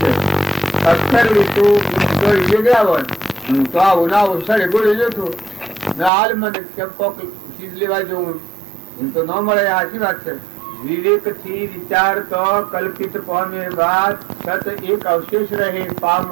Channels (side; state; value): left; drops out; at 6.1 s